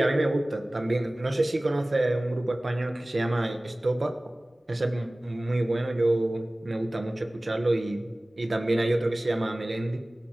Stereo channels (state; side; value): normal; both; correlation 0.98